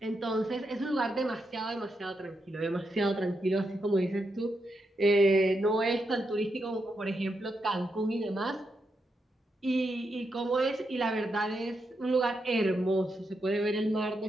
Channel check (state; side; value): normal; both; correlation 0.84